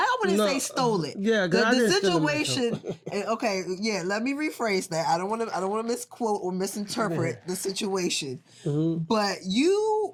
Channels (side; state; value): both; identical; correlation 1.00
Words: wouldn't say stole it. Yeah, the situation. Okay, yeah. Let me rephrase that. I don't want to misquote or misinterpret the situation. But